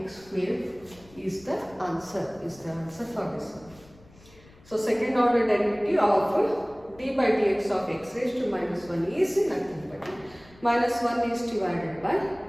square is the answer for this one. So second order derivative of d by dx of x raised to minus 1 is nothing but minus 1 is divided by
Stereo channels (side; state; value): left; noise; rumble, 25 dB below the sound